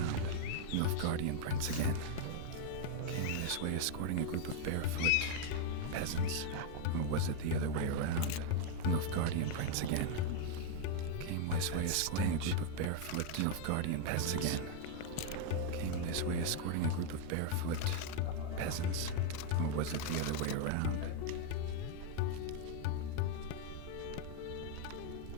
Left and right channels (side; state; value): both; different; correlation 0.00